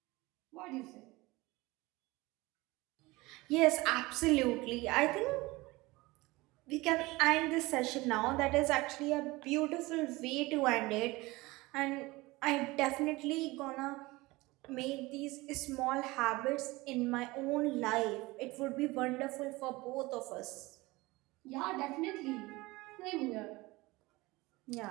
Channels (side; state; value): left; quieter; 21.5 dB